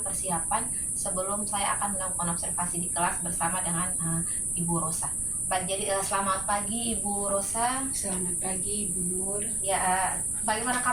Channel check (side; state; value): right; noise; rumble, 11 dB below the sound